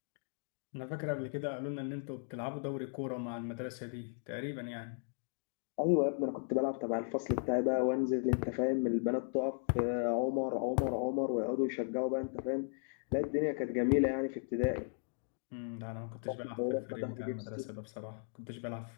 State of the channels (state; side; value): silent; right; digital silence